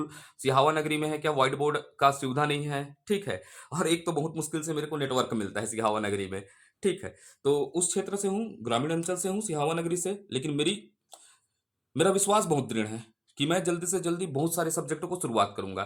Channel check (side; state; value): both; identical; correlation 1.00